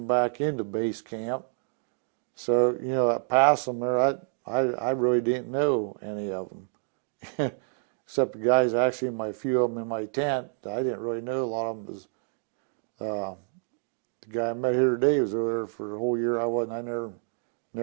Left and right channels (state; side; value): silent; left; 59 dB below the other